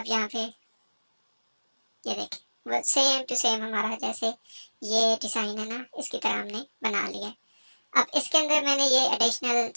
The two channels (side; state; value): both; inverted; correlation -1.00